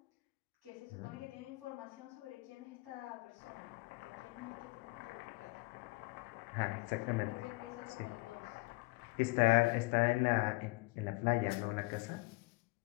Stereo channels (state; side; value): quieter; right; 23.8 dB